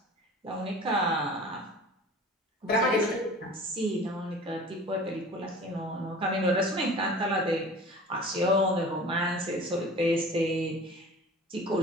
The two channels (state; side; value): normal; both; correlation 0.42